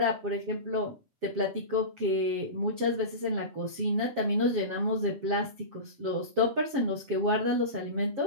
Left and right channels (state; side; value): late; left; 7.5 ms